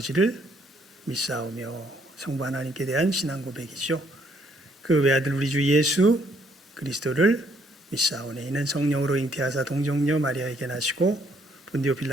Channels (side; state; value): both; normal; correlation 0.68